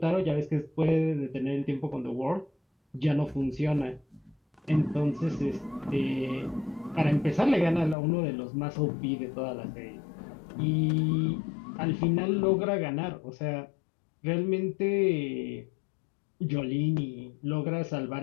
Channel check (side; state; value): right; drops out; at 8.0 s